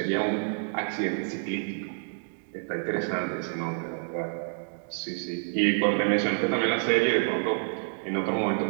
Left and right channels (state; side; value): silent; left; digital silence